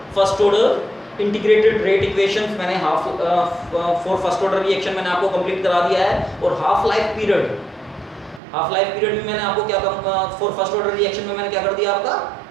first order integrated rate equations मैंने फॉर फर्स्ट ऑर्डर रिएक्शन मैंने आपको कंप्लीट करा दिया है। और हाफ लाइफ पीरियड में मैंने आपको क्या फॉर फर्स्ट ऑर्डर रिएक्शन में मैंने क्या कर दिया? आपका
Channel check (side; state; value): left; drops out; at 8.4 s